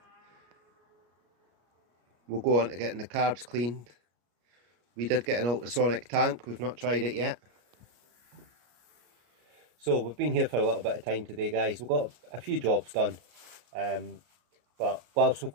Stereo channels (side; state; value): left; late; 33 ms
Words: we'll go on to getting the carbs cleaned. We did get an ultrasonic tank, we've not tried it yet. So we've been here for a little bit of time today, guys. We've got a few jobs done. But whilst we've